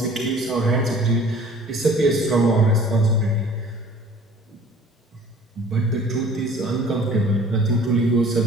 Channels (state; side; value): normal; both; correlation 0.50